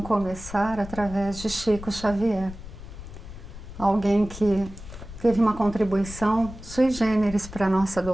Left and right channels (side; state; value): left; noise; rumble, 13 dB below the sound